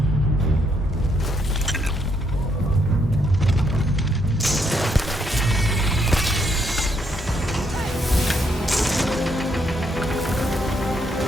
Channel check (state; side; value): normal; both; correlation 0.74